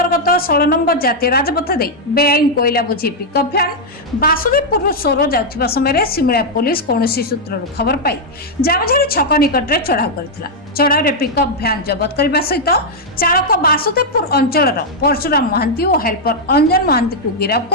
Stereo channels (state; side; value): normal; both; correlation -0.02